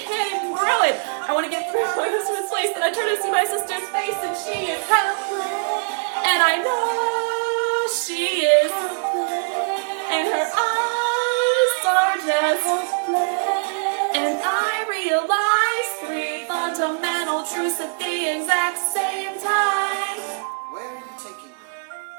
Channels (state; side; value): silent; left; digital silence